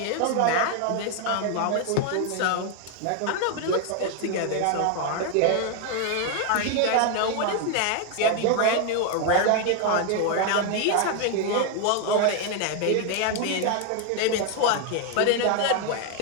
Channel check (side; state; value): both; different; correlation 0.01